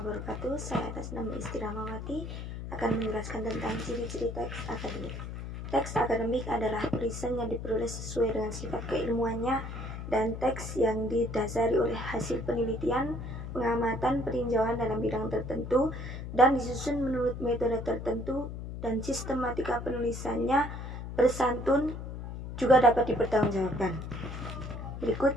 Saya atas nama Istiramawati akan menjelaskan tentang ciri-ciri teks akademik. Teks akademik adalah tulisan yang diperoleh sesuai dengan sifat keilmuannya dan teks yang didasari oleh hasil penelitian, pengamatan, peninjauan dalam bidang tertentu dan disusun menurut metode tertentu dan sistematika penulisannya bersantun juga dapat dipertanggungjawabkan. Berikut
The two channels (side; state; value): left; noise; hum, 8 dB below the sound